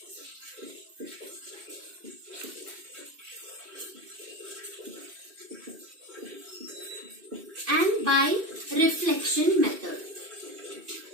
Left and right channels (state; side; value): late; left; 2.6 ms